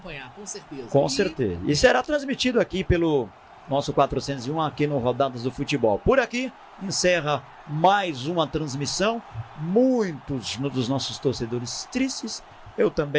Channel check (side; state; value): both; identical; correlation 1.00